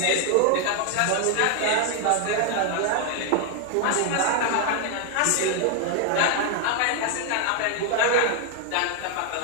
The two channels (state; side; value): different; both; correlation 0.00